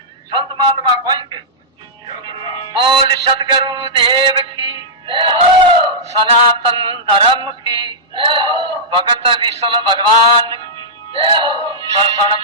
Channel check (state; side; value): normal; both; correlation -0.12